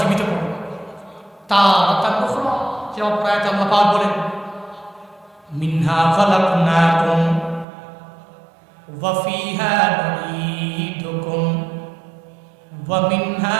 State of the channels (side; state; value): left; drops out; at 7.7 s